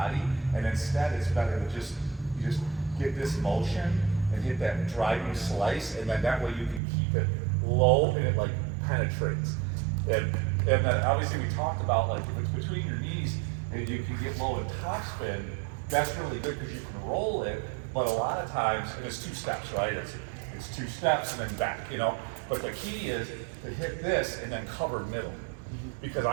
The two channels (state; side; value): drops out; left; at 6.8 s